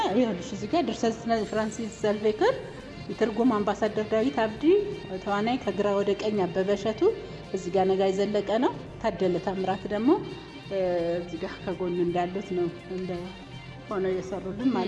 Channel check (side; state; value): both; identical; correlation 1.00